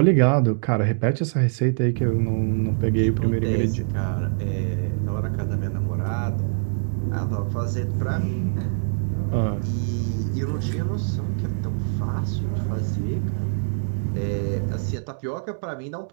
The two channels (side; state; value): left; silent; 63 dB below the other